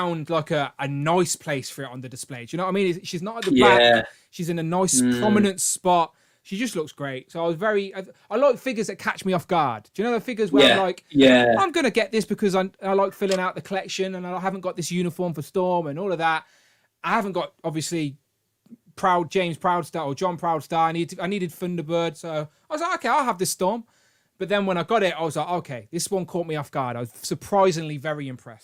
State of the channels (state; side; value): identical; both; correlation 1.00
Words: like a nice place for it on the display. Do you know what I mean? She's not at the back. She's in a nice prominent spot. She just looks great. So I like figures that catch me off guard. Do you know the figures where I'm like, I'm going to get this because I like filling out the collection and I haven't got this uniform for Storm and all of that. I haven't got, obviously, James Proudstar or John Proudstar. I needed Thunderbird. So I was like, okay, I'll have this Storm. But then when I got it, I was like, okay, this one caught me off guard. I was surprisingly very